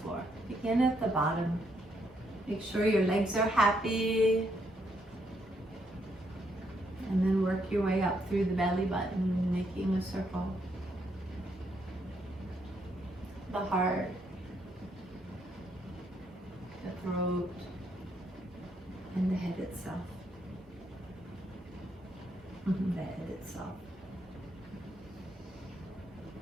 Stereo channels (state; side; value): normal; both; correlation 0.75